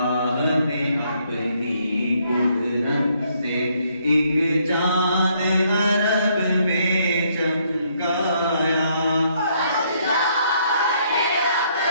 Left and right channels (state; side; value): inverted; both; correlation -0.70